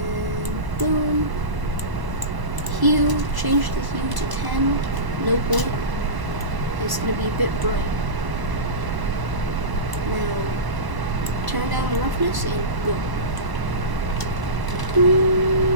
boom. Hue, change the hue to 10. No point. It's gonna be a bit bright. Now turn down the roughness and boom.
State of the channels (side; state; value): left; late; 1.0 ms